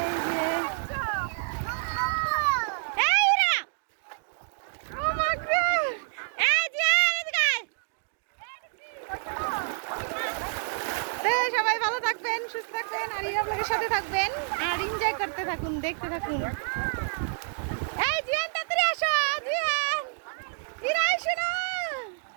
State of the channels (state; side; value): silent; left; digital silence